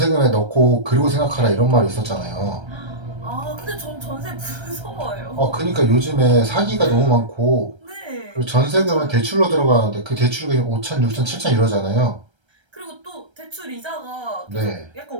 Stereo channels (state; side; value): late; left; 1.3 ms